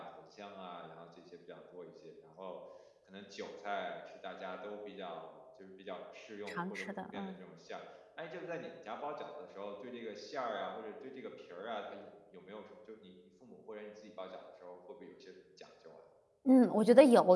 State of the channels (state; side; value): identical; both; correlation 1.00